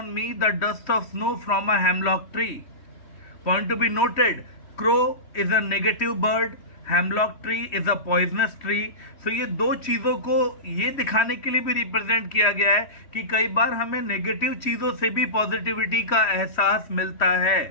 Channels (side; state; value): right; late; 3.1 ms